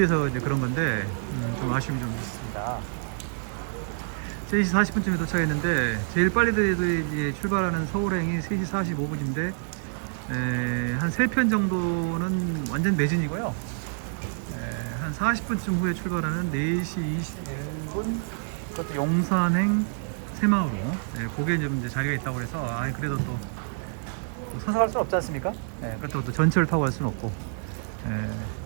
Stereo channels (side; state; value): left; silent; digital silence